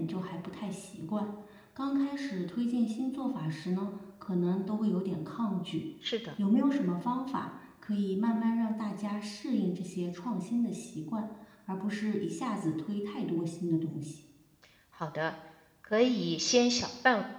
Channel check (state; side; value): identical; both; correlation 1.00